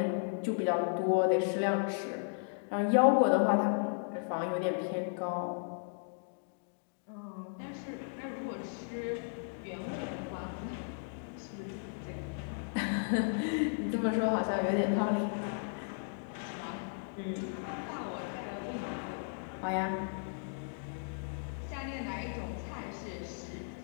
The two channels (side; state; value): right; silent; digital silence